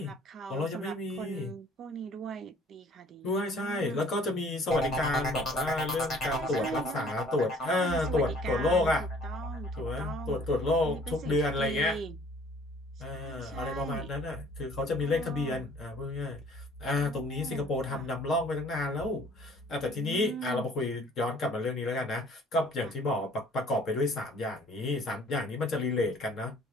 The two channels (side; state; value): both; normal; correlation 0.55